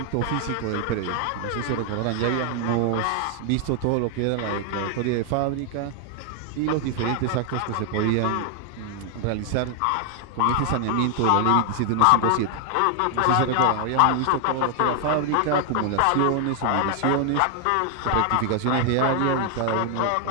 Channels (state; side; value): different; both; correlation 0.00